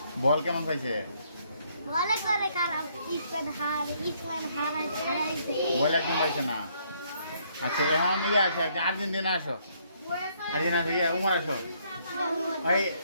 বল কেমন পাইছে বল একদম পাইছে না আচ্ছা এখন ইয়ে আছে আর্জেন্টিনা আসো আর্জেন্টিনা থেকে উমর আসো ওই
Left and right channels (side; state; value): both; inverted; correlation -0.69